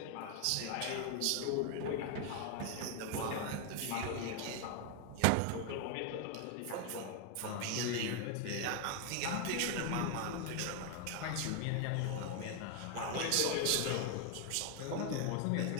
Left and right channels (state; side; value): different; both; correlation 0.01